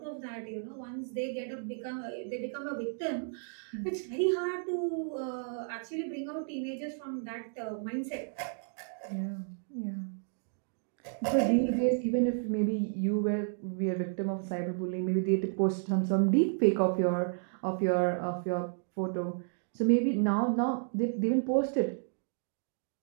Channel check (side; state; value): left; silent; digital silence